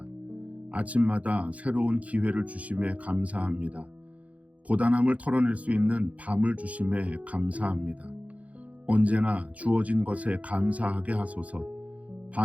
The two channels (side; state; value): left; late; 0.067 ms